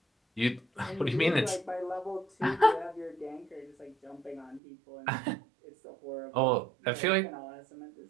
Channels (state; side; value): drops out; left; at 4.6 s